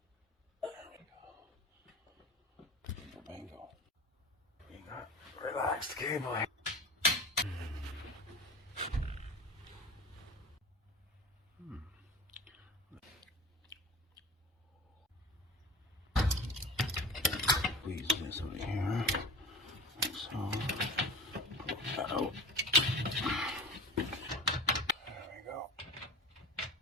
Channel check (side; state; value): both; normal; correlation 0.36